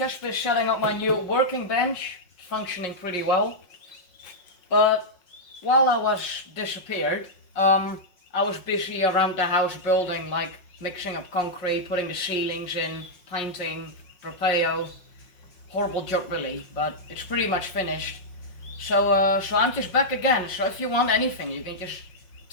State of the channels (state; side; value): late; right; 5.5 ms